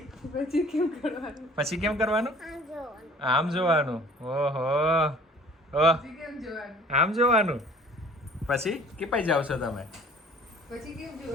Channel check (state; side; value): normal; both; correlation 0.51